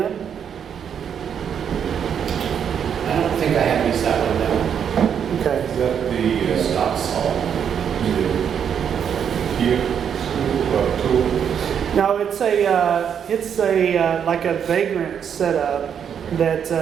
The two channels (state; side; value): quieter; left; 8.0 dB